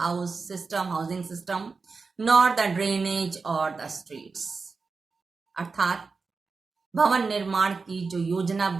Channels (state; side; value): quieter; left; 4.5 dB